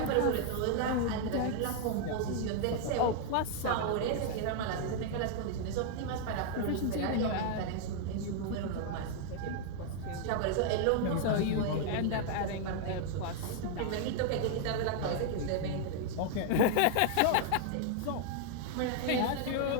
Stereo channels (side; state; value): both; different; correlation 0.00